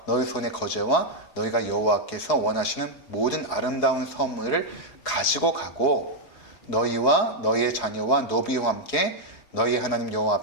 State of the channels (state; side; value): late; right; 4.8 ms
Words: 너희 손의 거제와 너희가 여호와께서 원하시는 모든 아름다운 선물을 가지고 가고 너희와 너희의 자녀와 노비와 함께 너희 하나님 여호와